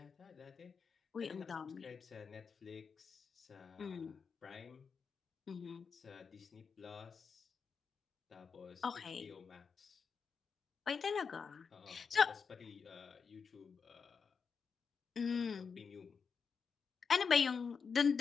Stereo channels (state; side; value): quieter; right; 5.8 dB